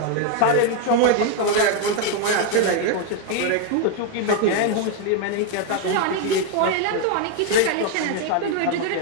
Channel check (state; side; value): different; both; correlation 0.01